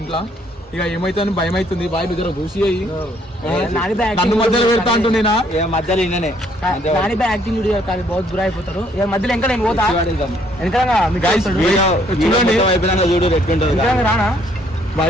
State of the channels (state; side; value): normal; both; correlation 0.66